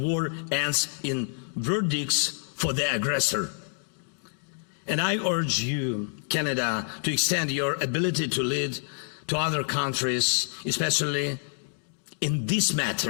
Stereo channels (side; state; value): right; silent; digital silence